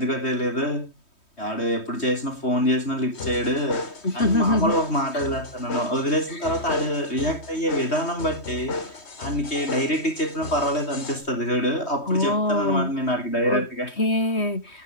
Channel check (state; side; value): late; right; 3.2 ms